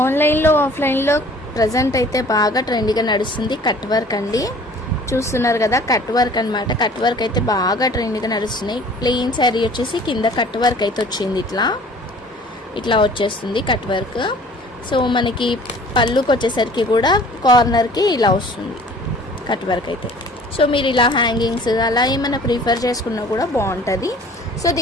ఆన్లైన్లో ఆఫ్లైన్లో ప్రజెంట్ అయితే బాగా ట్రెండీగా నడుస్తుంది కట్ వర్క్ అండి. చూస్తున్నారు కదా, కట్ వర్క్ అనమాట. కట్ వర్క్ అయితే బాగా ట్రెండీగా నడుస్తున్నాయి. ప్లెయిన్ శారీ వచ్చేసి కింద కట్ వర్క్ అయితే వచ్చింది. ఇట్లా వచ్చేస్తుంది కట్ వర్క్. సో మనకి పళ్ళుకి వచ్చేసరికి కూడా కార్నర్కి ఇలా వస్తుంది కట్ వర్క్ అయితే. సో మీరు ఇలా హ్యాంగింగ్స్ అలా ఏమైనా ప్రిఫర్ చేసుకున్నా కూడా బాగుంటుంది. సో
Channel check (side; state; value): both; normal; correlation 0.50